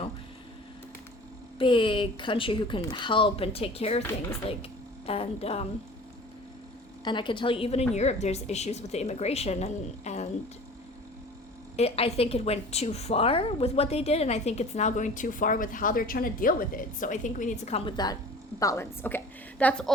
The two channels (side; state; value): both; normal; correlation 0.43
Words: big country who can help and take care of things, like, and I can tell you, even in Europe, there's issues with the immigration, and I think it went too far with what they did, and I think it's now going too far with how they're trying to deal with it. So I think we need to come with that balance. Okay, that's